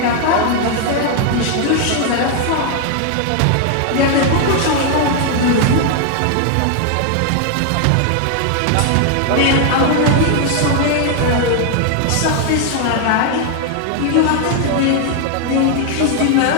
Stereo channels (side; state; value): both; different; correlation 0.00